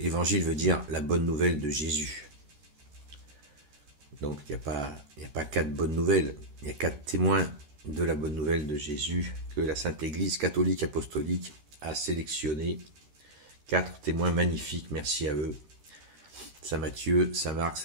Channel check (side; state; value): left; late; 13 ms